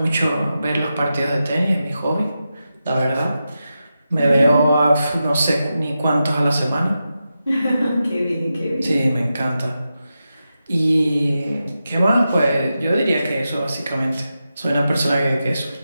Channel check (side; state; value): both; inverted; correlation -0.90